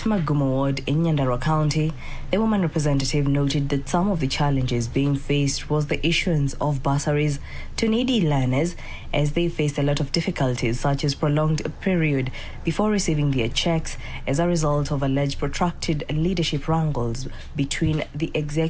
Magumo Ward in Nyandarua County, the woman representative noted that some of the challenges being faced was the issuance of bursaries to needy learners, as they faced a lot of difficulties such as prolonged period before receiving their checks as a result of alleged protracted leadership wrangles between the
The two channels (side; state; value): both; identical; correlation 1.00